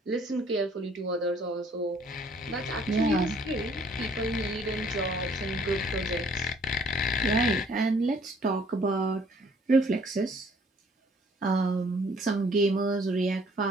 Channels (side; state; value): both; normal; correlation 0.60